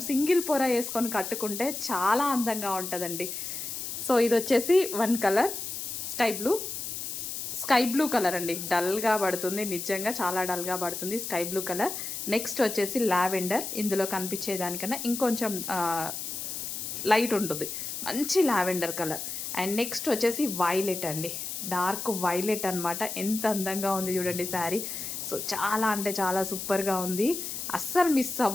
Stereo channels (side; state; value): left; noise; hiss, 6 dB below the sound